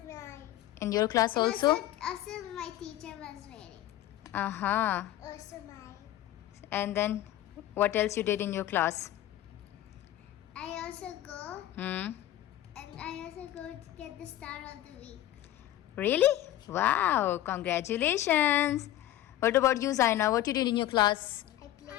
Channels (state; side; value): quieter; right; 13.6 dB